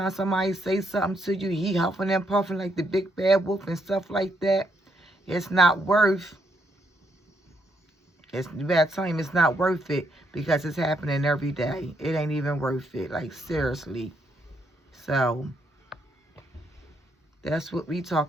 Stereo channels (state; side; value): normal; both; correlation 0.75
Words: somebody say something to you, he huffing and puffing like the big bad wolf and stuff like that, it's not worth, you better tell him it's not worth it because it's happening every day. It ain't even worth it, like seriously. So, that's what we